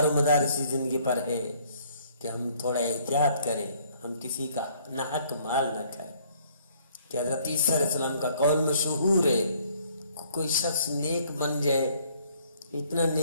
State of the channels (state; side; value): inverted; both; correlation -0.62